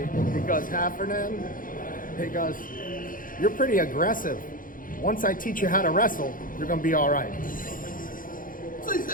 goes, Heffernan, he goes, you're pretty aggressive. Once I teach you how to wrestle, you're going to be all right. So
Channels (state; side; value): late; right; 0.40 ms